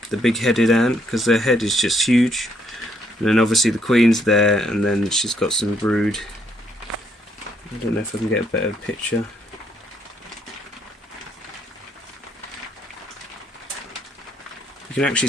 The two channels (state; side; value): normal; both; correlation 0.71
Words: the big-headed ant, because their head is just huge. And then obviously the queen's there, and then she's got some brood. I don't know if I can get a better picture. You can actually